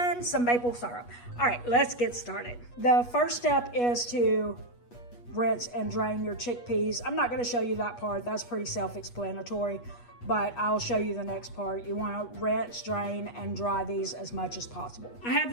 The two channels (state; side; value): late; right; 8.3 ms